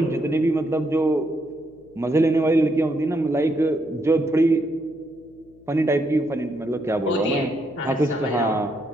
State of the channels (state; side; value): noise; left; hum, 28 dB below the sound